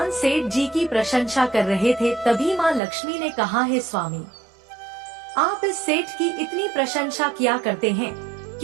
सेठ जी की प्रशंसा कर रहे थे, तभी माँ लक्ष्मी ने कहा, हे स्वामी, आप इस सेठ की इतनी प्रशंसा किया करते हैं,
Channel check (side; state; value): left; drops out; at 2.8 s